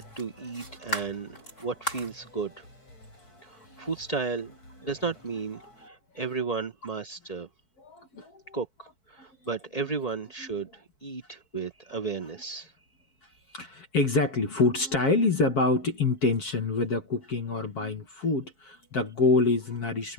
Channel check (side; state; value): right; late; 4.6 ms